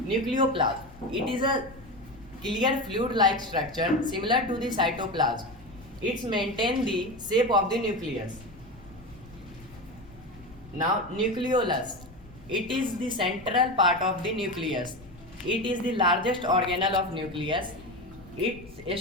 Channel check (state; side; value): noise; left; rumble, 21 dB below the sound